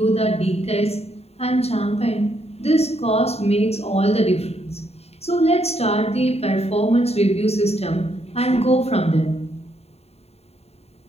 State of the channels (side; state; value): right; late; 0.30 ms